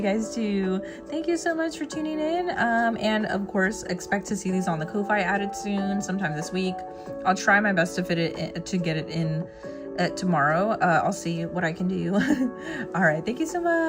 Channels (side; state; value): both; identical; correlation 1.00